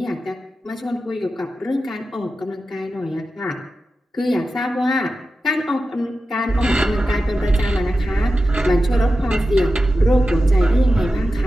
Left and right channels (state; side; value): normal; both; correlation 0.92